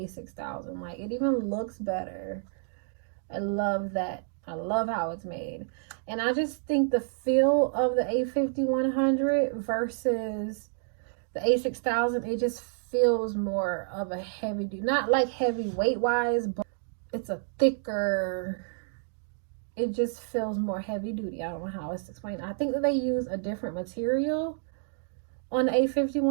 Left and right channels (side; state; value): left; silent; digital silence